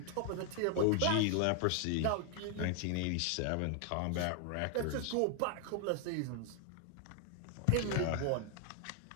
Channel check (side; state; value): both; different; correlation 0.00